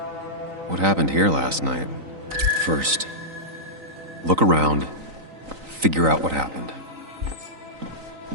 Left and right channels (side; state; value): left; late; 3.9 ms